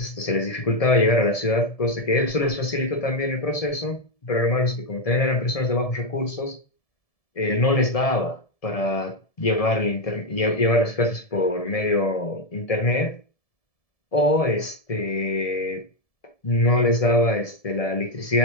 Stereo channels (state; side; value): late; right; 1.7 ms